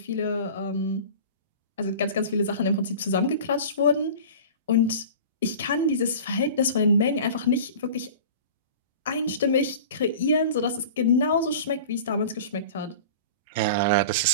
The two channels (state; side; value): inverted; both; correlation -0.38